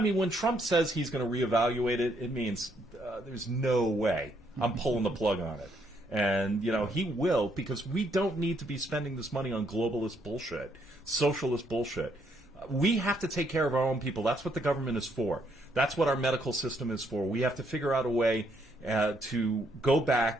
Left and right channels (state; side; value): normal; both; correlation 0.72